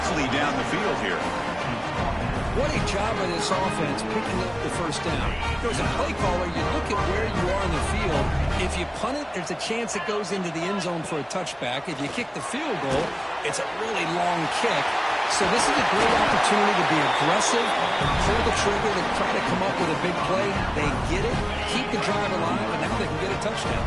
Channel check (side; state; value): both; identical; correlation 1.00